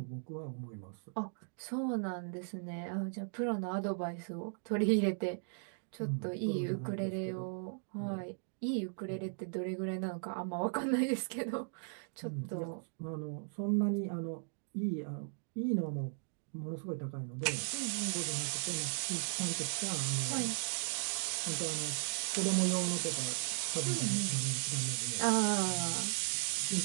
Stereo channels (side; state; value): left; silent; digital silence